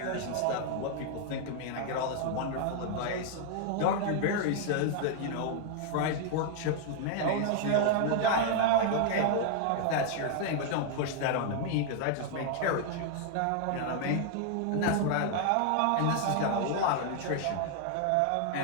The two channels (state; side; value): different; both; correlation 0.00